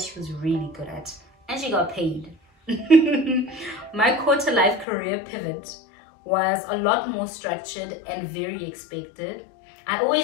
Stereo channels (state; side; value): drops out; right; at 4.9 s